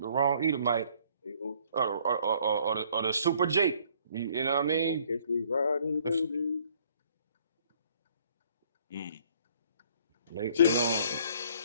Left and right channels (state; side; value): inverted; both; correlation -0.61